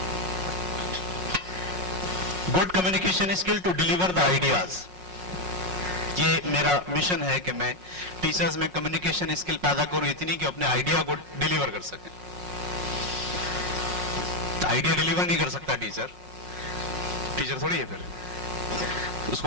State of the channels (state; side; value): late; left; 5.5 ms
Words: Good communication skill to deliver the ideas. یہ میرا مشن ہے کہ میں ٹیچرز میں کمیونیکیشن اسکل پیدا کروں اتنی کہ اپنے آئیڈیا کو ڈیلیور کر سکیں. آئیڈیا ڈیلیور نہیں کر سکتا ٹیچر تھوڑی ہے, پھر اس